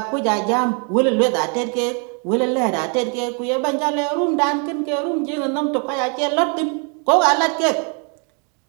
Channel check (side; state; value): left; quieter; 37.7 dB